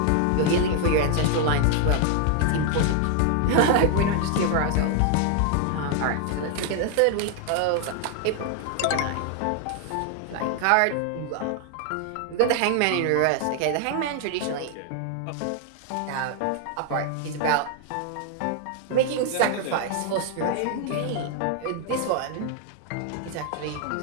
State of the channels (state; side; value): different; both; correlation 0.00